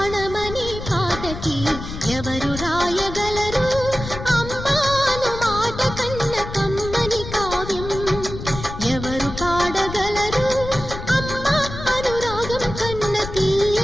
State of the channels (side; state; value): left; noise; rumble, 9 dB below the sound